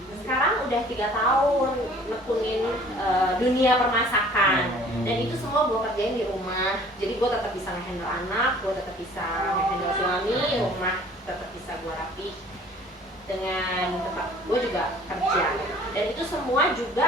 sekarang udah 3 tahun nekunin dunia permasakan, dan itu semua gue kerjain di rumah. Jadi gue tetap bisa ngehandle anak, gue tetap bisa ngehandle suami, rumah tetap bisa gue rapi dengan tempat gue juga kerja. Dan itu semua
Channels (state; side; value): normal; both; correlation 0.52